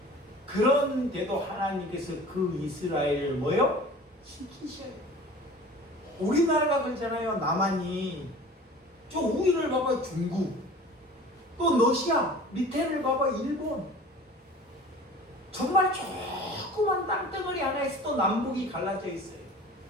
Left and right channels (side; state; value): both; normal; correlation 0.42